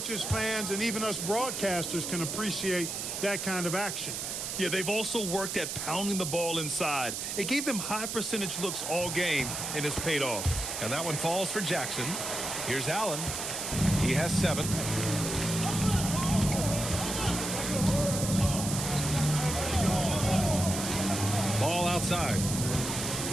fans, and even us broadcasters can appreciate that kind of action. Yeah, they've also worked at pounding the ball inside. It gave them high percentage looks all game, and it's paid off. And that one falls for Jackson. Here's Allen. He has 7. Ball outside.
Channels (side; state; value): right; noise; hiss, 4 dB below the sound